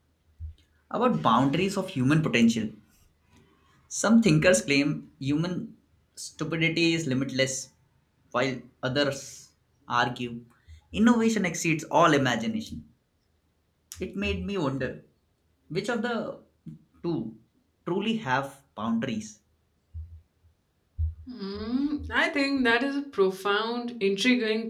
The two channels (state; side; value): identical; both; correlation 1.00